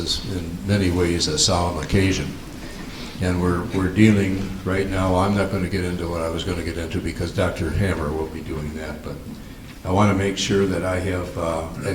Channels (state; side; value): identical; both; correlation 1.00